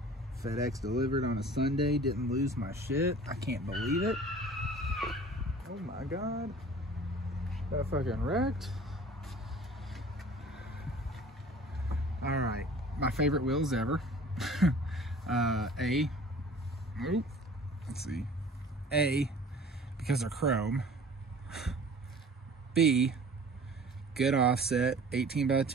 FedEx delivered on a Sunday, didn't lose my shit. I can't believe it. Oh my God. That fucking wrecked. All right, my favorite wheels ever. Let's see. A, because they're chrome. B, good offset, 18 by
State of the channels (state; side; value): normal; both; correlation 0.46